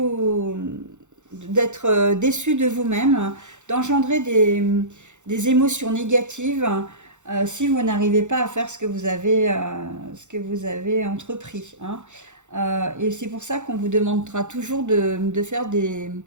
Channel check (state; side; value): late; left; 0.84 ms